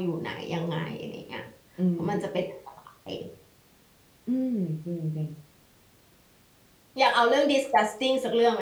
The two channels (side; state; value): both; identical; correlation 1.00